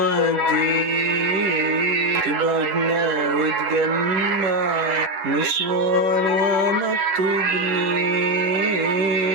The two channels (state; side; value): late; left; 10 ms